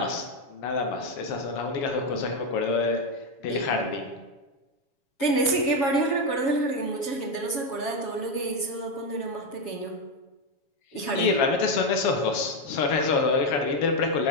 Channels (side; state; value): right; late; 7.2 ms